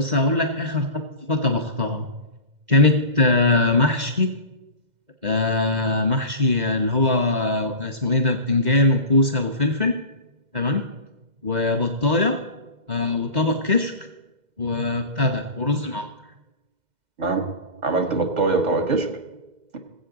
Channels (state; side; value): late; left; 2.0 ms